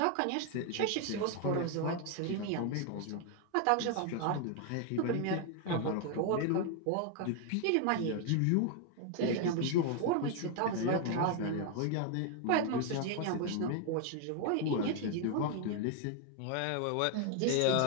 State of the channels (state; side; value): different; both; correlation 0.01